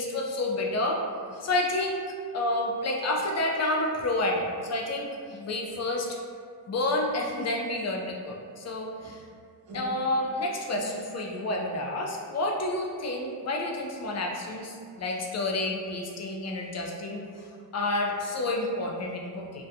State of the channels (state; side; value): normal; both; correlation -0.12